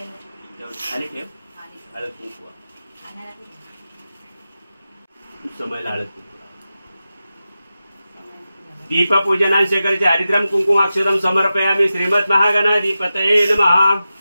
खाली ठेव. हळद कुंकू समयला हळद कुंकू. दीप पूजनांशकरचे हरिद्रम कुंकुम अक्षरम समर्पयामि. श्रीमद महागणाधिपतये नमः.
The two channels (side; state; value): both; inverted; correlation -0.93